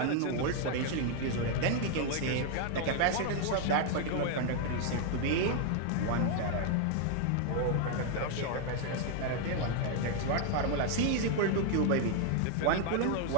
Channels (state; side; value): different; both; correlation 0.00